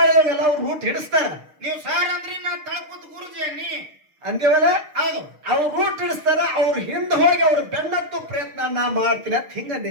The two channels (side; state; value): left; late; 6.5 ms